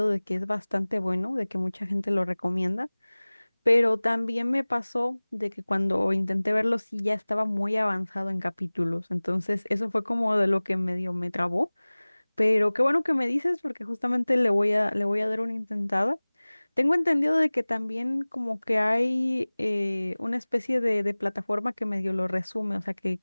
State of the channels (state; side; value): inverted; both; correlation -1.00